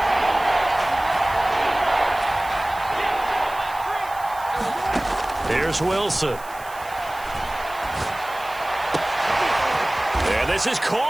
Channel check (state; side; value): noise; right; hiss, 19 dB below the sound